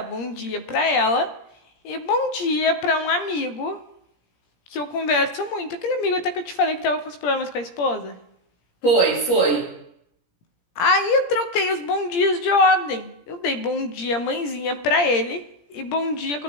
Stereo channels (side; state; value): right; late; 17 ms